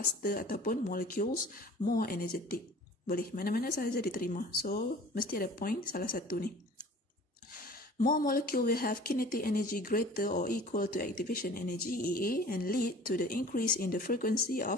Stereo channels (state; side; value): normal; both; correlation 0.46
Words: ataupun molecules more energetic. Boleh, mana-mana sahaja diterima. So, mesti ada point salah satu ni. More molecule will have kinetic energy greater or equal to activation energy EA and lead to the increase in the frequency